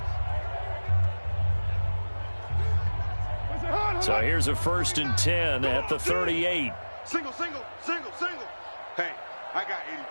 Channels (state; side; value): inverted; both; correlation -1.00